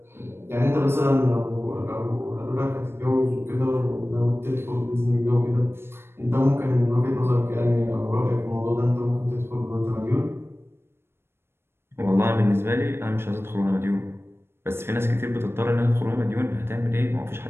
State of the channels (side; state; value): left; late; 0.12 ms